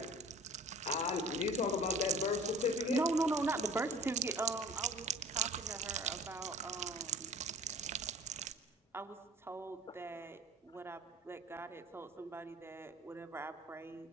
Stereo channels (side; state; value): both; normal; correlation 0.44